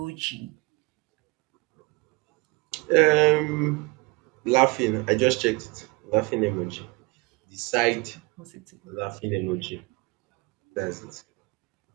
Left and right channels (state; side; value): quieter; left; 26.4 dB